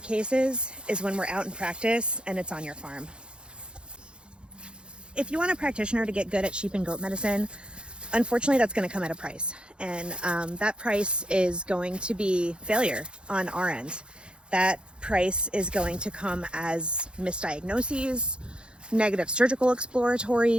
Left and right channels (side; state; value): left; late; 0.054 ms